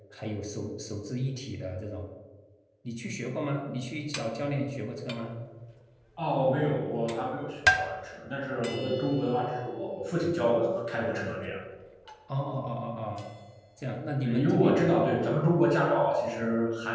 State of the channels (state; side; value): identical; both; correlation 1.00